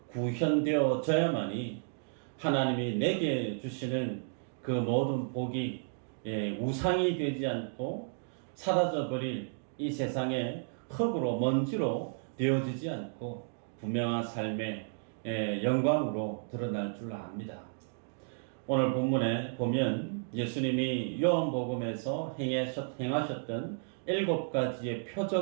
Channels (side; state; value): left; silent; digital silence